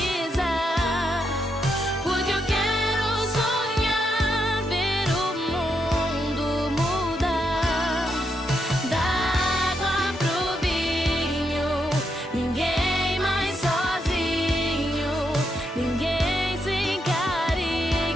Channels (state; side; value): normal; both; correlation 0.81